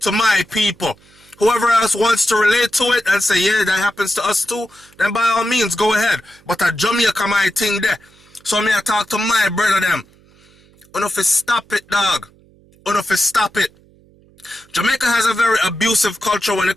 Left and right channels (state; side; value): noise; right; hum, 29 dB below the sound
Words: to my people. Whoever else wants to relate to it and say, yeah, that happens to us too, then by all means, go ahead. But at Jamaica, my thing there. So me I talk to my brother them. Enough is stop it, dog. Enough is stop it. Jamaica has a very abusive culture when it